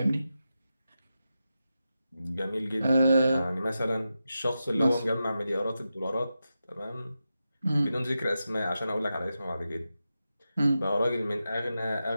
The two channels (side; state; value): both; inverted; correlation -0.90